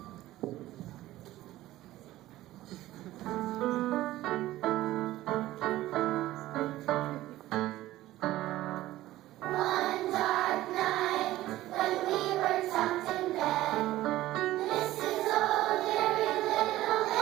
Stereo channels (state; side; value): quieter; left; 15.7 dB